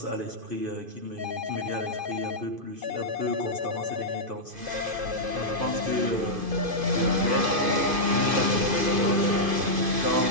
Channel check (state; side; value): late; left; 2.5 ms